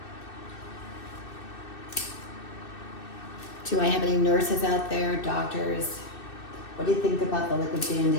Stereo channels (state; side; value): late; right; 2.6 ms